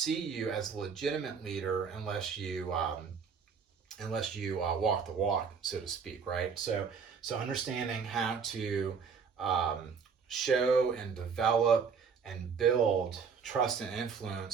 you as a legitimate leader unless you walk the walk, so to speak, right? So understanding how to show and develop and build trust and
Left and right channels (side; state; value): left; quieter; 6.0 dB